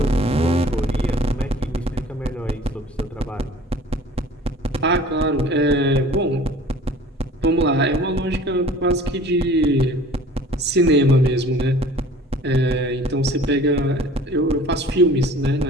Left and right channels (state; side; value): normal; both; correlation 0.48